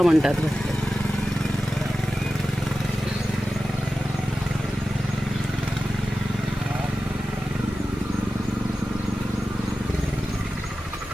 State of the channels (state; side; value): normal; both; correlation 0.93